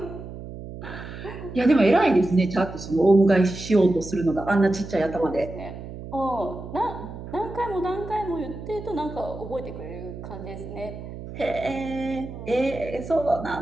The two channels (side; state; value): right; noise; hum, 11 dB below the sound